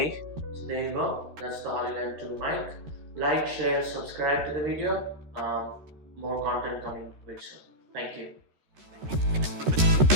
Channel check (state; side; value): late; left; 13 ms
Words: So there you go. That's the HOLLYLAND 2 mic. Like, share, subscribe to the video. More content coming very soon. Thank you.